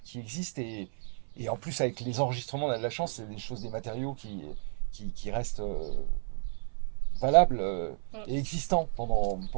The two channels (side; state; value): left; silent; 57 dB below the other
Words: existe. Et en plus, avec les enregistrements, on a de la chance, c'est des choses, des matériaux qui restent valables Mm. et existants pendant